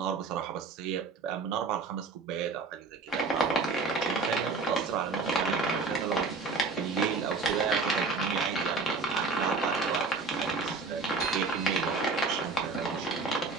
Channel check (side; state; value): left; quieter; 4.0 dB